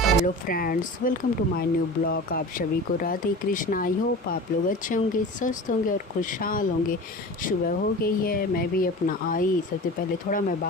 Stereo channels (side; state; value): both; normal; correlation 0.35